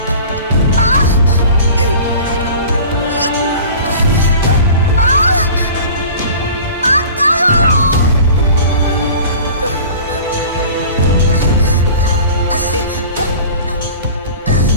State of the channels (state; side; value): inverted; both; correlation -0.41